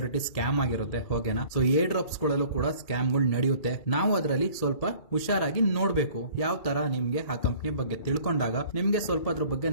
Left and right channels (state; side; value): late; right; 2.3 ms